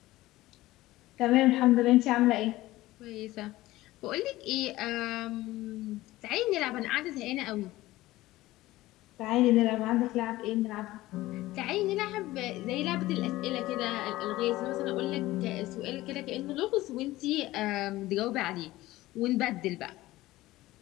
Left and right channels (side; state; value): right; quieter; 17.4 dB